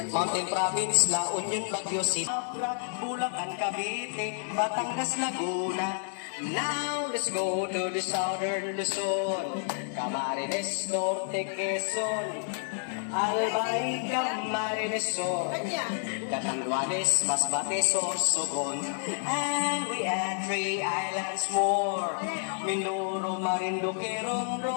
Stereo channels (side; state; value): right; silent; 58 dB below the other